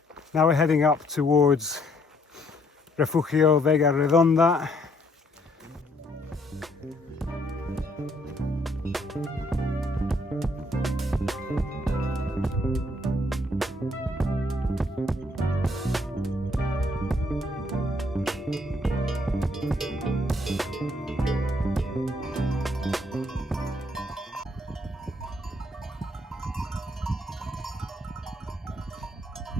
Now we're heading up towards Refugio Vega Redonda.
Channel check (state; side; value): normal; both; correlation 0.68